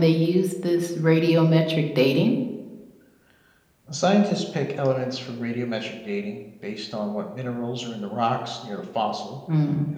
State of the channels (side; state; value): both; identical; correlation 1.00